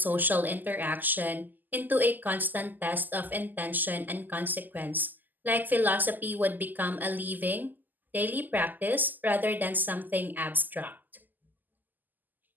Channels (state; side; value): late; left; 0.086 ms